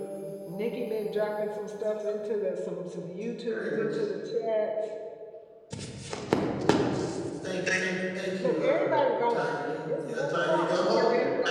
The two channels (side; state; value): both; identical; correlation 1.00